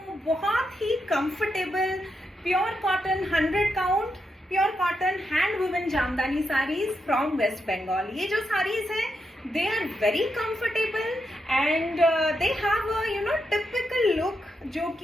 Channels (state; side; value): normal; both; correlation 0.84